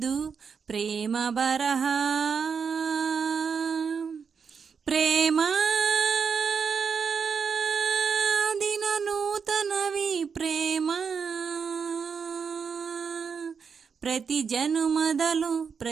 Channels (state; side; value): quieter; left; 6.1 dB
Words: ಪ್ರೇಮ ಬರಹ. ಪ್ರೇಮ ದಿನ ನೂತನವಿ ಪ್ರೇಮ, ಪ್ರತಿ ಜನುಮದಲು